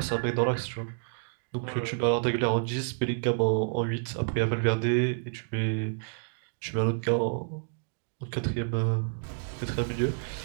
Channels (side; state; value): left; silent; digital silence